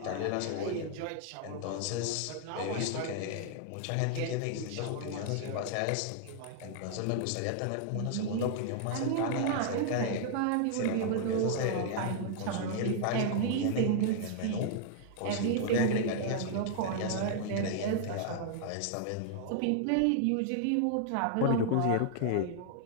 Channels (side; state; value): both; different; correlation -0.01